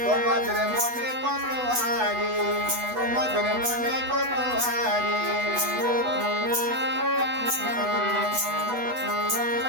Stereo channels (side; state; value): left; late; 8.1 ms